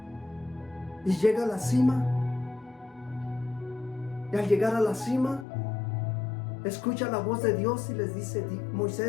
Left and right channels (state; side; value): drops out; right; at 5.5 s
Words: y llega a la cima. Y al llegar a la cima, escucha la voz de Dios y les dice: